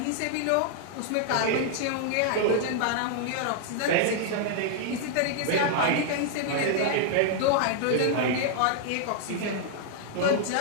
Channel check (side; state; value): both; different; correlation 0.00